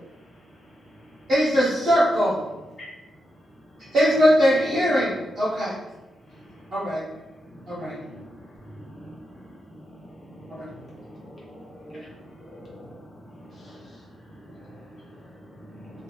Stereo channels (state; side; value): normal; both; correlation 0.86